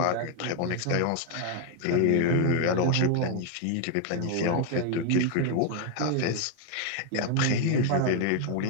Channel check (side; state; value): both; different; correlation 0.01